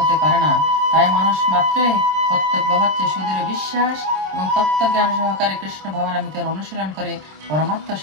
পারে না। তাই মানুষ মাত্রই কর্তব্য হচ্ছে সুদৃঢ় বিশ্বাস এবং তত্ত্বজ্ঞান সহকারে কৃষ্ণ ভাবনামৃতের অনুশীলন করে পরমাত্ম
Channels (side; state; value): left; late; 26 ms